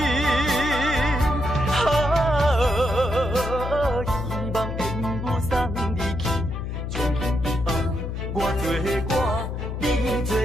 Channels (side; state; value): left; noise; hum, 4 dB below the sound